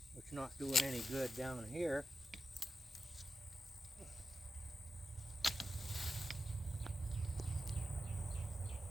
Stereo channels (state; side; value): normal; both; correlation 0.90